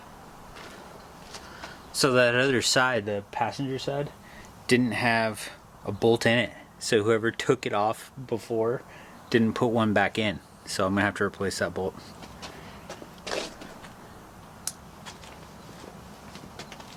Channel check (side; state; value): both; identical; correlation 1.00